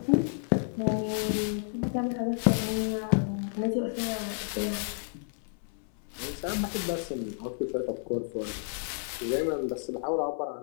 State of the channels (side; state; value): right; silent; 57 dB below the other